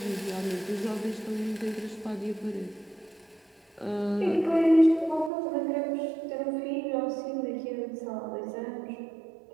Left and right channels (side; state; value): left; drops out; at 5.3 s